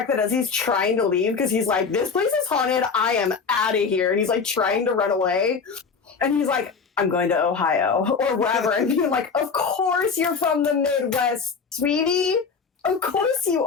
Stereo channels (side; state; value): right; quieter; 5.4 dB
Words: that as he's trying to leave, because he's like, this place is haunted, I am out of here. And he's like trying to run away. And he's like, I'm going to Ohio or wherever. And you're like, of course you're from the Midwest, sweetie. Of course you